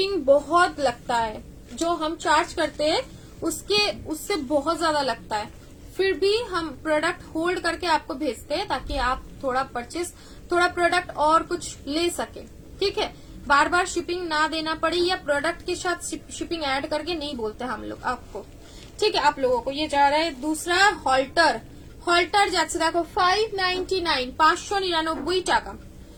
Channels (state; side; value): identical; both; correlation 1.00